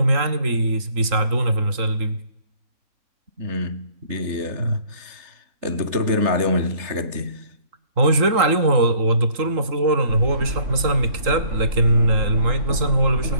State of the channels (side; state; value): left; late; 3.8 ms